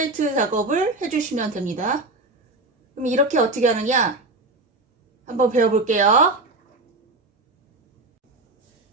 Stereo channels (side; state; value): left; quieter; 3.0 dB